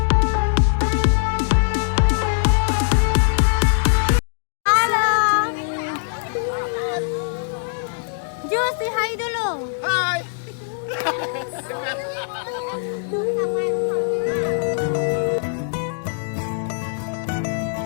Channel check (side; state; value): right; silent; digital silence